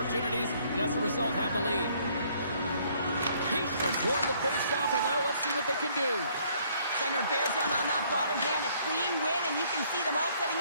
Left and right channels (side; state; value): both; inverted; correlation -0.63